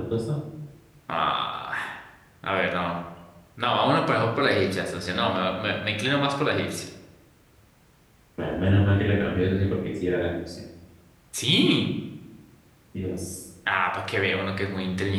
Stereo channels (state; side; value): identical; both; correlation 1.00